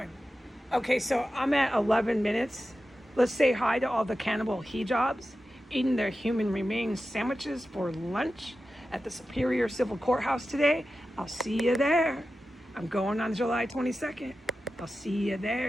Okay, so I'm at 11 minutes. Let's say hi to all the cannibal hijabs eating their human remains sandwiches for lunch at the Superior Civil Courthouse today. I'll see you there. I'm going on July 22nd. I'll see you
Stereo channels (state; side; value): normal; both; correlation 0.93